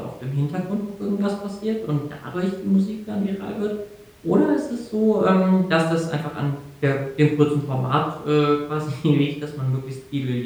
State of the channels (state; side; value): identical; both; correlation 1.00